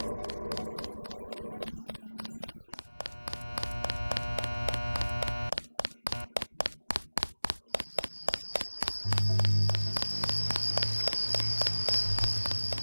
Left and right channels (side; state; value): both; inverted; correlation -1.00